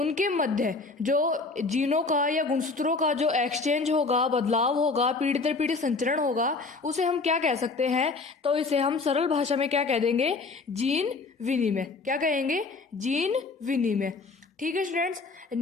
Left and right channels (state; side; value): quieter; right; 4.0 dB